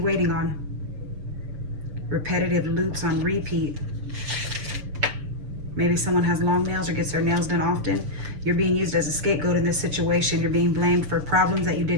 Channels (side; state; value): left; late; 6.7 ms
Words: waiting on? Repetitive loops on repeat. Maybe someone has long nails or gets their nails done often. You're being used as a scapegoat in this situation. You're being blamed for problems that you